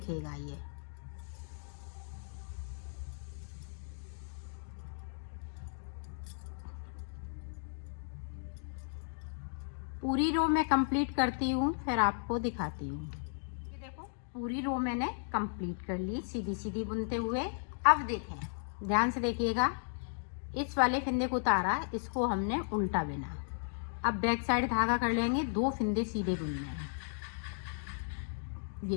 ये। पूरी रो मैं कंप्लीट करती हूँ, फिर आपको दिखाती हूँ। ये देखो, पूरी रो मैंने कंप्लीट कर ली सीधी सीधी बुनते हुए। अब देखें, ध्यान से देखिएगा, इस वाले फिंदे को उतारा, इसको हमने उल्टा बुना। अब बैक साइड धागा कर लेंगे, 2 फिंदे सीधे बुनने हैं। ये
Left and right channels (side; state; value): right; silent; digital silence